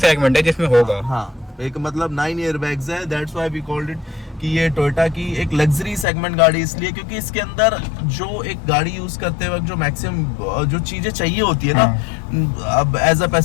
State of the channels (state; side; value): drops out; right; at 6.1 s